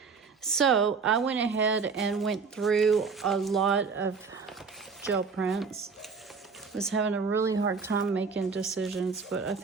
So I went ahead and went through a lot of gel prints. Was having a really hard time making decisions, but I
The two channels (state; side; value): quieter; left; 5.2 dB